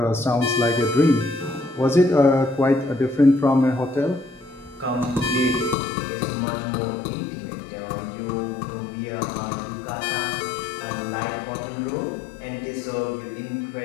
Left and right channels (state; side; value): drops out; right; at 5.8 s